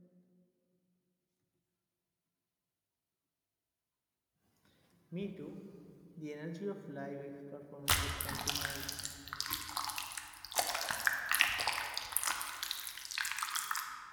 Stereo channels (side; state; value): both; identical; correlation 1.00